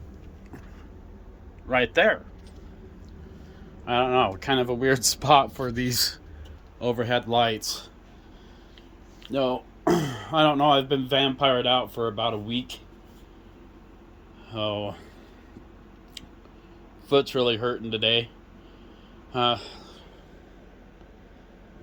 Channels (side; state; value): both; identical; correlation 1.00